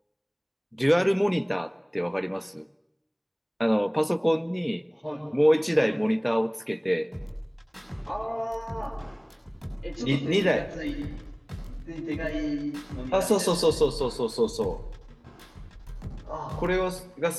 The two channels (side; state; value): both; identical; correlation 1.00